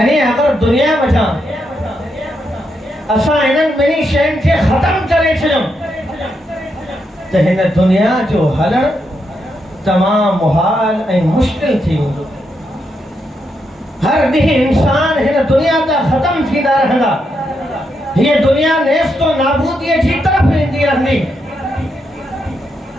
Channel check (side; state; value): both; normal; correlation 0.81